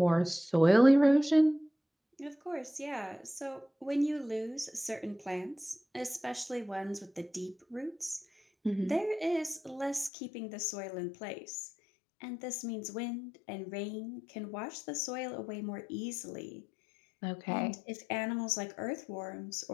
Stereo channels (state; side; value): drops out; right; at 10.1 s